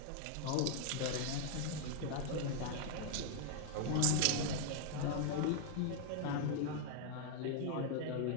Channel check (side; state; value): both; different; correlation 0.00